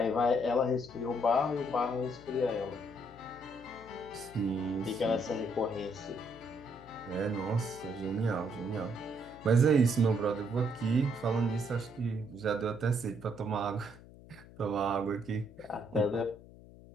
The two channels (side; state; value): left; noise; hum, 19 dB below the sound